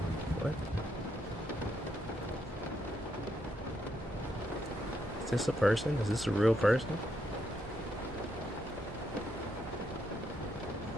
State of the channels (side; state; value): both; normal; correlation 0.78